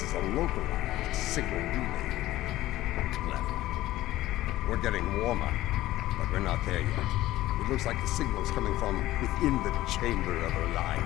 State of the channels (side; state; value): right; quieter; 15.8 dB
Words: is a localized signal relay. Clever. We're getting warmer, but we're not there yet. It looks like the signal's coming from within the Chamber of